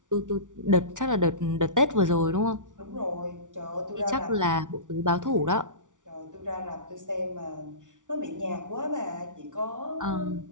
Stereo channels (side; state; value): left; late; 0.87 ms